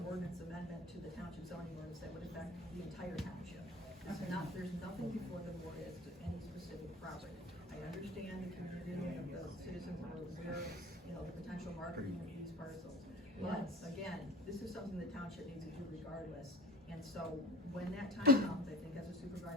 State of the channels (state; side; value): normal; both; correlation 0.41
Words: ordinance amendment to the township zoning ordinance that would affect the entire township. There's nothing before the board as to any specific property. I understand the community and the citizens are aware of, the potential marketing of these parcels. But again, this is something the township needs to do regardless. And so when that time comes, I think as the